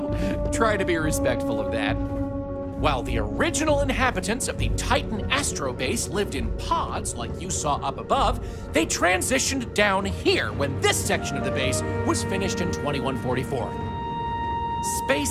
try to be respectful of that. While the original inhabitants of the Titan Astro Base lived in pods like you saw up above, they transitioned down here when this section of the base was finished in 2144.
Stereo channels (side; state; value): both; identical; correlation 1.00